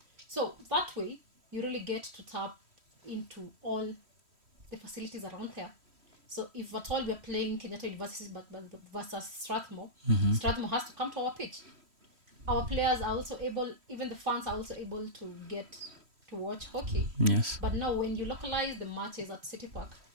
So that way, you really get to tap into all the facilities around there. So if at all we're playing Kenyatta University versus Strathmore, Strathmore has to come to our pitch. Our players are also able, even the fans are also able to get to watch hockey. Yes. But now when you localize the matches at City Park,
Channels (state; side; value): late; left; 3.1 ms